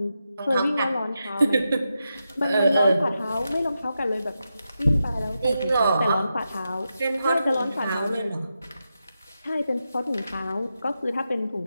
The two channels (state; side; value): inverted; both; correlation -0.88